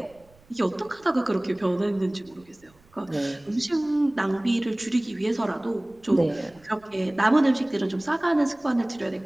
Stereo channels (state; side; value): noise; right; rumble, 29 dB below the sound